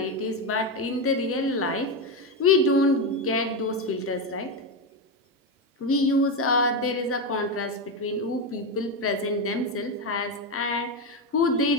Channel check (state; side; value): normal; both; correlation 0.11